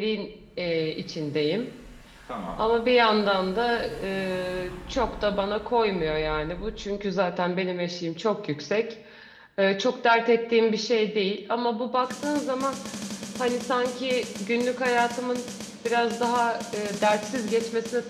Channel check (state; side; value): identical; both; correlation 1.00